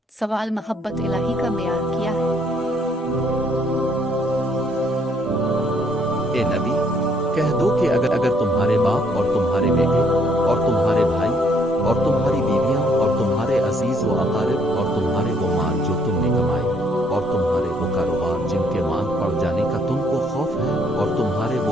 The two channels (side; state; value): both; normal; correlation 0.66